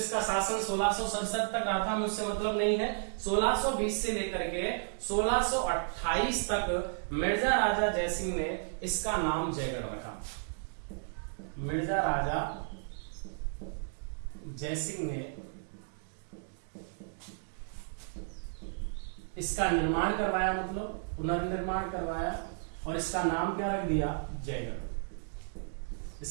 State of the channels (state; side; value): silent; left; digital silence